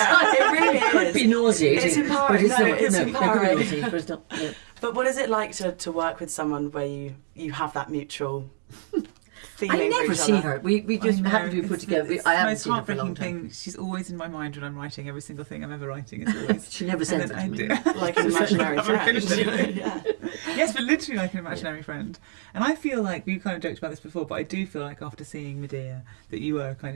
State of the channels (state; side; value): silent; left; digital silence